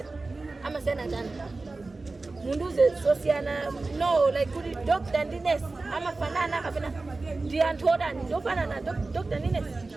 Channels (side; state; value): left; quieter; 3.5 dB